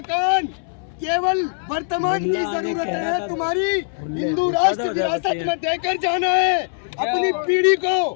केवल वर्तमान की जरूरत है, तुम्हारी हिंदू राष्ट्र विरासत में देकर जाना है अपनी पीढ़ी को,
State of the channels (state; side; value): silent; right; digital silence